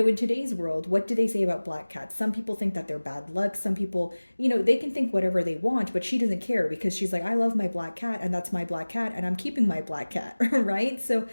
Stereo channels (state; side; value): inverted; both; correlation -1.00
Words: today's world, what do they say about black cats? Some people think that they're bad luck. Some people, they can think whatever they want, but she doesn't care, because she's like, I love my black cat, and that's my black cat, and I'm keeping my black cat, right? So